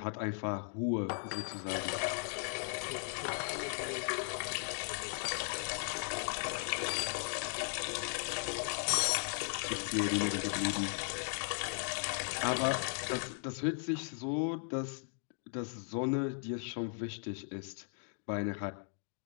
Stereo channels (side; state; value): right; silent; 53 dB below the other